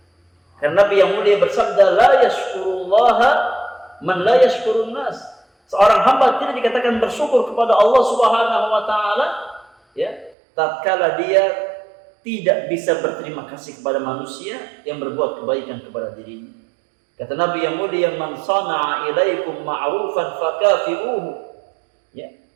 Karena Nabi yang mulia bersabda, la yashkurullaha man la yashkurun nas. Seorang hamba tidak dikatakan bersyukur kepada Allah Subhanahu wa taala, ya, tatkala dia tidak bisa berterima kasih kepada manusia yang berbuat kebaikan kepada dirinya. Kata Nabi yang mulia, man sana'a ilaikum ma'rufan fakafi'uhu. Ya,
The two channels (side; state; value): left; drops out; at 10.4 s